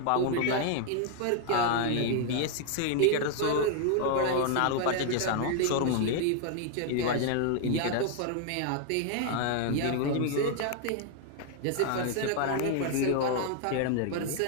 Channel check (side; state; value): both; different; correlation 0.00